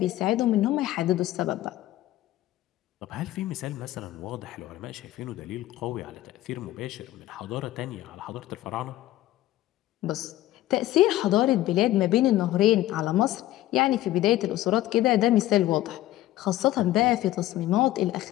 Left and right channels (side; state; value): right; quieter; 15.0 dB